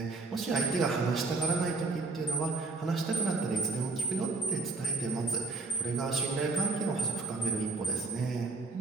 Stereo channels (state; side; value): quieter; left; 3.8 dB